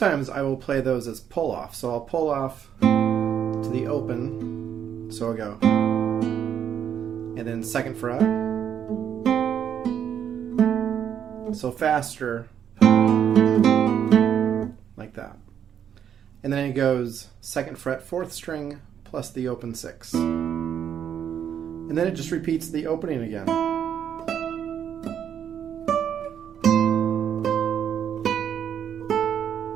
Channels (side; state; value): left; quieter; 8.9 dB